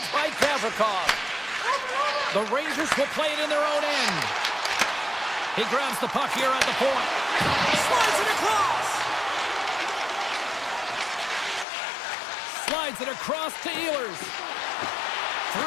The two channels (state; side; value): drops out; right; at 11.7 s